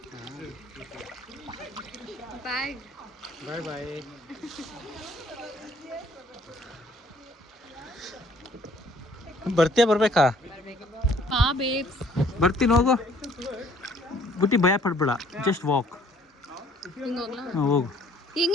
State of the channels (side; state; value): both; normal; correlation 0.59